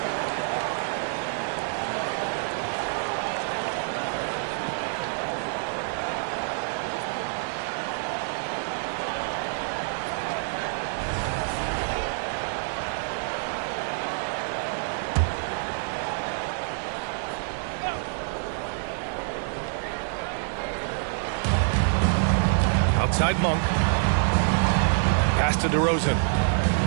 Outside Monk. Pass to DeRozan.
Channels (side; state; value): left; silent; digital silence